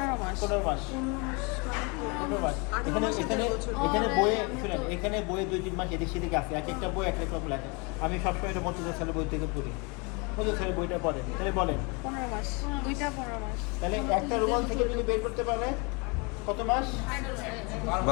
15 মাস। 15 মাস। 15 মাস। এখানে বইয়ে শুনেন, এখানে বইয়ে 2-3 মাস এদিক সেদিকে আছে, এক একটা বই এক এক রকম লেখা। আমি সবসময় এটা মধ্যে ছেলে বই থেকে পড়ি, মধ্যে ছেলে বইটা পড়েন। তাহলে বলেন 15 মাস, দুইটা 15 মাস। তাহলে একটা রুমাল থেকে যদি বের করতে পারে কত মাস?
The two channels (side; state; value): right; quieter; 30.4 dB